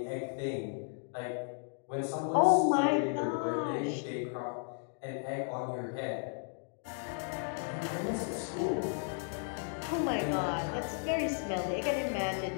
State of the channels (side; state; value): right; silent; 55 dB below the other